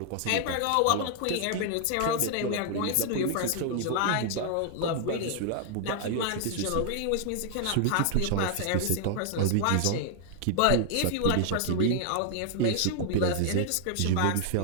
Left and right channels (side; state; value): both; different; correlation 0.00